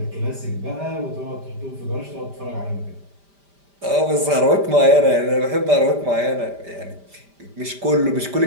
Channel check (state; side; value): late; left; 5.0 ms